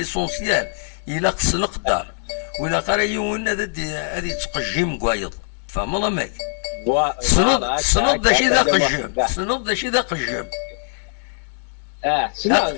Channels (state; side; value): silent; right; 60 dB below the other